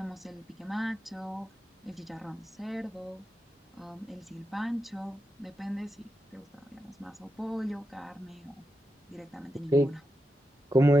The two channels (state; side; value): normal; both; correlation 0.88